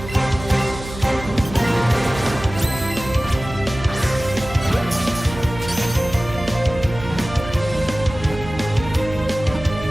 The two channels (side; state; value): right; noise; hum, 12 dB below the sound